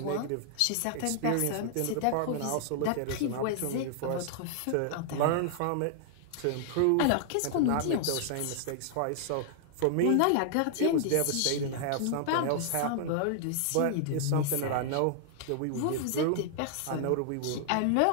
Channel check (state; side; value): different; both; correlation -0.01